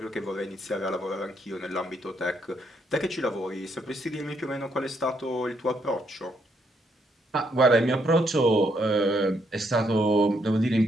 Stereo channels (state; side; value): normal; both; correlation 0.74